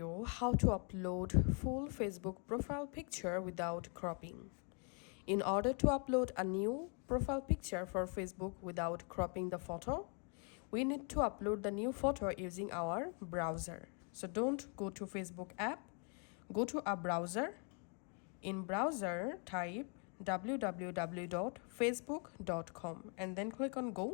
how to upload full Facebook profile picture without cropping. In order to upload a new profile picture for Facebook without cropping the photo, we need to upload the new photo using our browser. So don't go to Facebook app, go to a browser. In browser, type www.facebook.com and then click on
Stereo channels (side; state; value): right; quieter; 39.0 dB